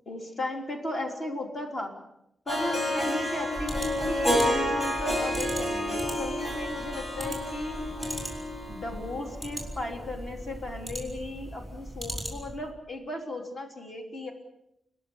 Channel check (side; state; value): both; normal; correlation 0.81